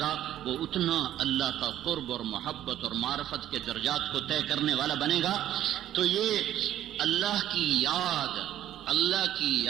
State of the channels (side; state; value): left; quieter; 12.1 dB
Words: وہ اتنا اللہ کا قرب اور محبت اور معرفت کے درجات کو طے کرنے والا بنے گا. تو یہ اللہ کی یاد،